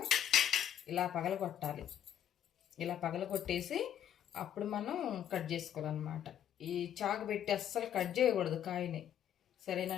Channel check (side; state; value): right; quieter; 10.1 dB